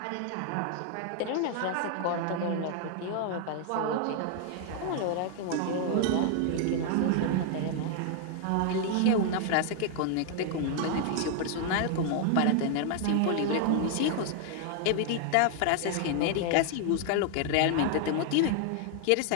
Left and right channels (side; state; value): both; different; correlation 0.00